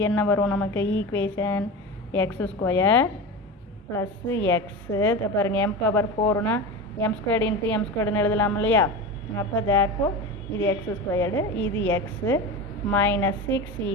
என்ன வரும் நமக்கு ஈக்குவேஷன், x² ப்ளஸ்ஸு எக்ஸு. பாருங்கள் m⁴ m² இன்ட்டு m²ன்னு எழுதலாம் இல்லையா? அப்போ தேர்ஃபோர் இது x², இது எக்ஸு, மைனஸ் 6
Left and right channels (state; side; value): normal; both; correlation 0.25